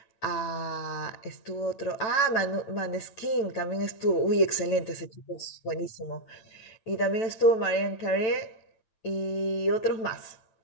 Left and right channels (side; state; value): right; late; 9.1 ms